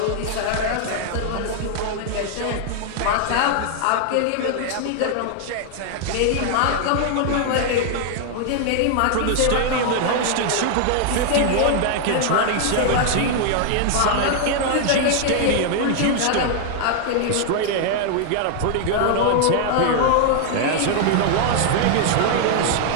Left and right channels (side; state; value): both; different; correlation 0.00